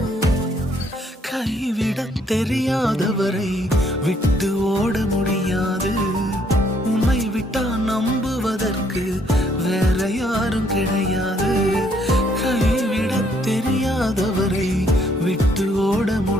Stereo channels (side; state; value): both; normal; correlation 0.68